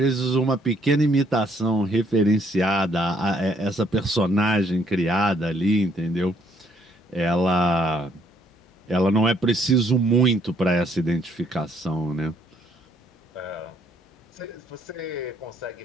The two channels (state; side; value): normal; both; correlation 0.67